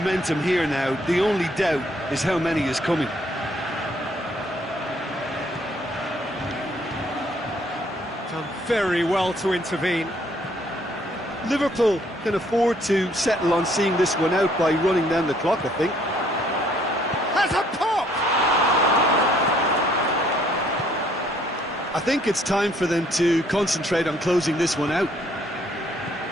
here now. The only doubt is how many is coming. Done very well to intervene. Liverpool can afford to settle on seeing this one out by running down the clock, I think. Has a pop! I think it's time for them to concentrate on closing this one out.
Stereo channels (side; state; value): both; normal; correlation 0.64